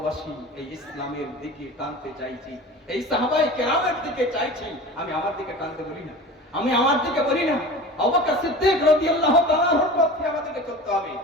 এই ইসলামের দিকে টানতে চাইছি, এই সাহাবায়ে কেরামের দিকে চাইছি। আমি আমার দিকে টানতে বলি না, আমি আমার দিকে বলি না। আবু বকর সিদ্দিক রাদিয়াল্লাহু তাআলা আনহুর পথে আমাদেরকে চলতে হবে,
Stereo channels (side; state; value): both; normal; correlation 0.36